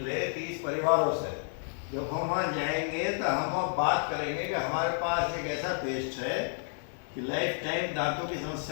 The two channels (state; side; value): silent; right; 57 dB below the other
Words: 30 परिवारों से, जब हम वहाँ जाएंगे तो हम वहाँ बात करेंगे कि हमारे पास एक ऐसा पेस्ट है कि लाइफ टाइम दांतों की